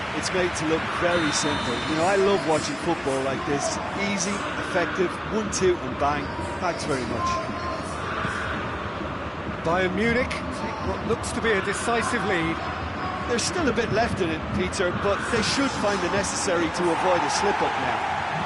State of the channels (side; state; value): both; identical; correlation 1.00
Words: it's made to look very simple. You know, I love watching football like this. Easy, effective, 1-2 and bang. Thanks very much. Bayern Munich take what looks to be a decisive lead. There's still a bit left in it, Peter, but they should find it necessary to avoid a slip-up now.